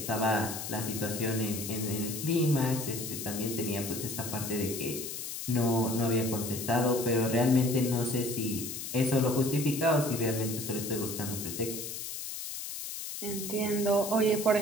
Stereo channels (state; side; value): noise; left; hiss, 7 dB below the sound